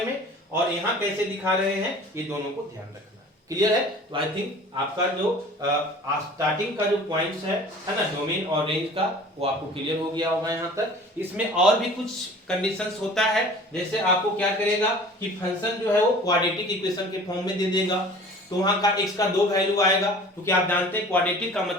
में, और यहाँ कैसे दिखा रहे हैं, ये दोनों को ध्यान रखना है। क्लियर है? तो आई थिंक आपका जो स्टार्टिंग का जो पॉइंट्स है ना, डोमेन और रेंज का, वो आपको क्लियर हो गया होगा यहाँ तक। इसमें और भी कुछ कंडीशंस होता है, जैसे आपको क्या करेगा कि फंक्शन जो है वो क्वाड्रेटिक इक्वेशन के फॉर्म में दे देगा, तो वहां का x का 2 वैल्यू आएगा, क्योंकि आप जानते हैं क्वाड्रेटिक का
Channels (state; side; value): normal; both; correlation 0.45